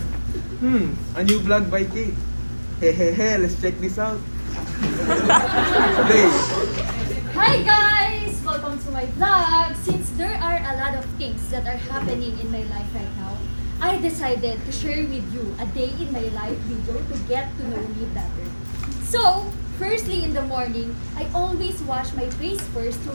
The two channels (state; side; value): inverted; both; correlation -1.00